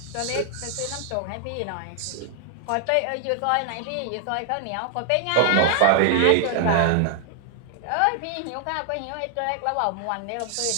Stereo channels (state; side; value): different; both; correlation 0.00